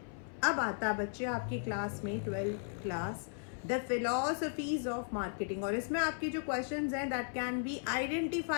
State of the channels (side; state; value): right; silent; 54 dB below the other